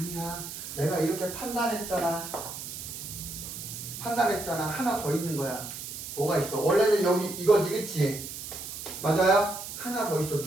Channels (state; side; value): noise; right; hiss, 9 dB below the sound